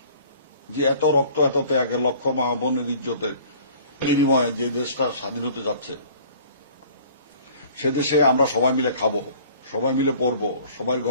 যে এত রক্ত, এত ত্যাগের, লক্ষ মা বোনের ইজ্জতের বিনিময়ে যে দেশটা স্বাধীন হতে যাচ্ছে, সে দেশে আমরা সবাই মিলে খাবো, সবাই মিলে পড়বো, সবাই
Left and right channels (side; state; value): both; inverted; correlation -0.50